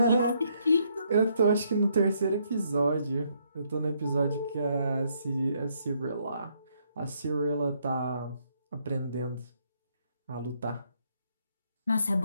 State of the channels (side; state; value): both; inverted; correlation -0.72